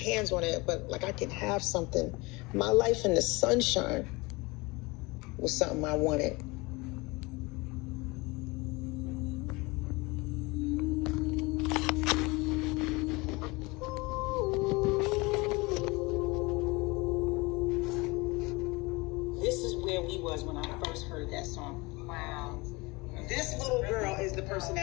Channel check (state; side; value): quieter; right; 24.5 dB